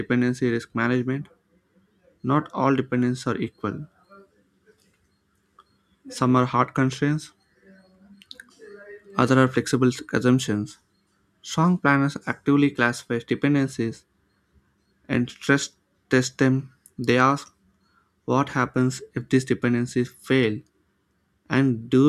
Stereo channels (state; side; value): identical; both; correlation 1.00